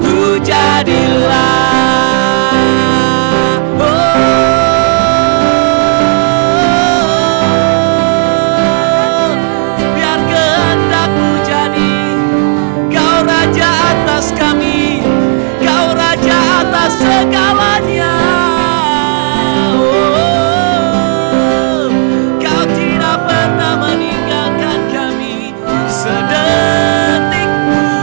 jadilah. Biar kehendak-Mu jadi. Kau Raja atas kami, Kau Raja atas segalanya. Kau tidak pernah meninggalkan kami sedetik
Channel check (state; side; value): silent; left; digital silence